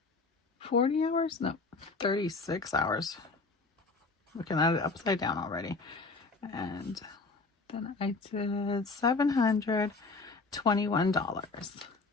40 hours? No, 36 hours. Looking at it upside down already. And then I did $721.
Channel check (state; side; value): quieter; right; 3.9 dB